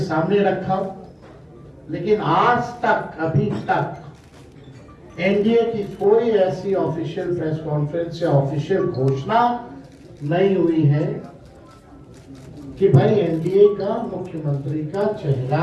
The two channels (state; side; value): identical; both; correlation 1.00